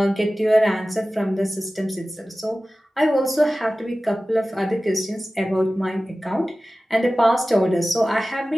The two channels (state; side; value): normal; both; correlation 0.96